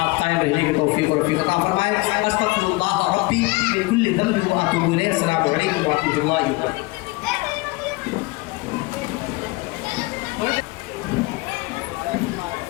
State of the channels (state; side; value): quieter; right; 23.4 dB